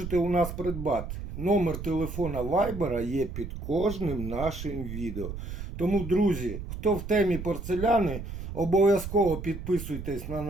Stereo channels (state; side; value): noise; right; rumble, 8 dB below the sound